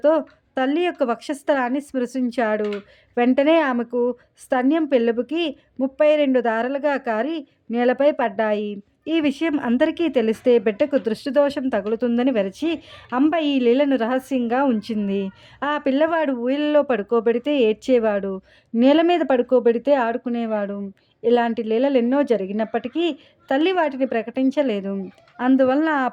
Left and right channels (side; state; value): both; identical; correlation 1.00